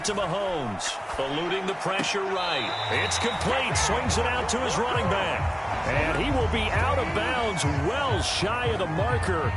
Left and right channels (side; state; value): both; identical; correlation 1.00